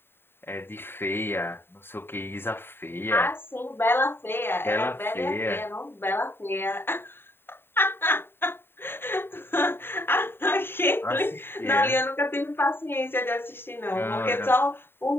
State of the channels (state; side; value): late; right; 0.11 ms